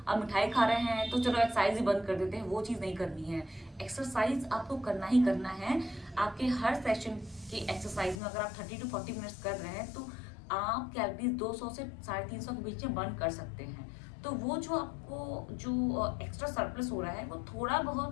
आप मिठाई खा रहे हैं तो चलो एक्सरसाइज ही बंद कर देते हैं। वो चीज़ नहीं करनी है। एक्सरसाइज आपको करना ही करना है। आपके हर सेशन की एक्सरसाइज में अगर आप 30 to 40 मिनट्स कर रहे हैं तो आप कैलोरीज 200 से 350 के बीच में बर्न कर सकते हैं। तो वो जो आपको जो एक्स्ट्रा सरप्लस हो रहा है वो थोड़ा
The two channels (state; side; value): drops out; right; at 8.2 s